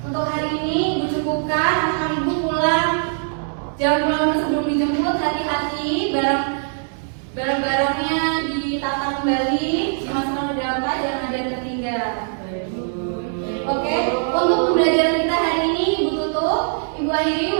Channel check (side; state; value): left; silent; digital silence